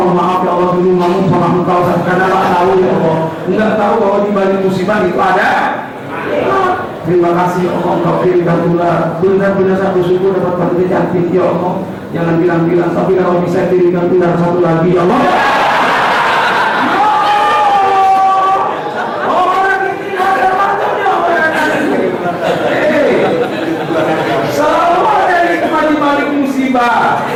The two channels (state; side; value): identical; both; correlation 1.00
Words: maaf ya Allah, dulu ngomong sama engkau karena tak tahu ya Allah, enggak tahu bahwa di balik musibah itu ada. Terima kasih ya Allah, engkau kirimkan ular. Benar-benar saya bersyukur dapat wanita cantik ya Allah. Jangan bilang-bilang, tapi kalau bisa kirimkan ular satu lagi ya Allah.